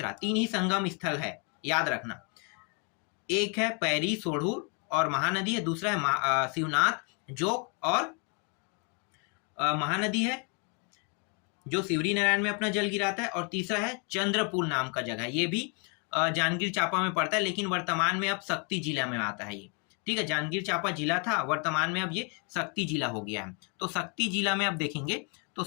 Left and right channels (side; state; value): right; quieter; 36.2 dB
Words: 3 ही संगम स्थल है, याद रखना। एक है पैरी सोढ़ूर और महानदी है, दूसरा है शिवनाथ, जोक और महानदी है जो सिवरी नारायण में अपना जल गिराता है, और तीसरा है चंद्रपुर नाम का जगह। ये भी जांजगीर चांपा में पड़ता है, लेकिन वर्तमान में अब शक्ति जिला में आता है ये, ठीक है। जांजगीर चांपा जिला था, वर्तमान में अब ये शक्ति जिला हो गया है। तो शक्ति जिला में अब देखेंगे, तो